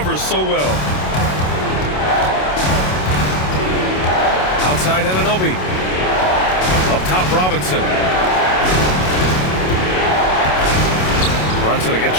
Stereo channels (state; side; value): late; right; 27 ms